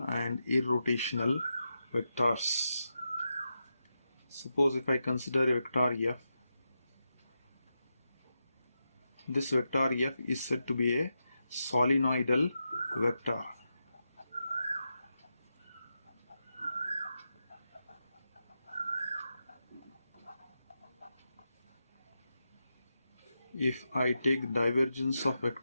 and irrotational vectors. Suppose if I consider a vector f, this vector f is said to be a solenoidal vector. If I take divergence of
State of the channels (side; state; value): both; inverted; correlation -0.88